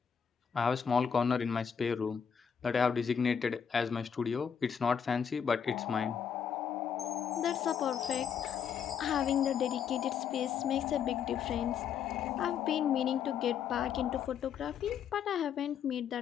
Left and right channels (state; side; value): quieter; right; 7.6 dB